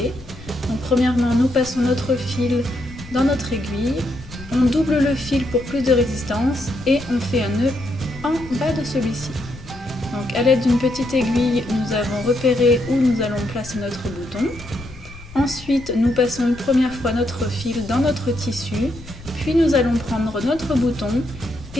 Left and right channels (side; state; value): left; noise; rumble, 17 dB below the sound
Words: Donc premièrement, nous passons notre fil dans notre aiguille, on double le fil pour plus de résistance et on fait un nœud en bas de celui-ci. Donc à l'aide d'une petite aiguille, nous avons repéré où nous allons placer notre bouton. Ensuite, nous passons une première fois notre fil dans notre tissu, puis nous allons prendre notre bouton